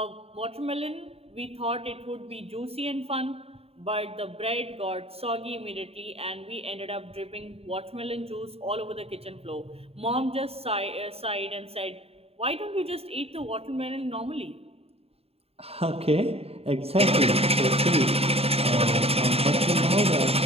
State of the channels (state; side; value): late; left; 0.29 ms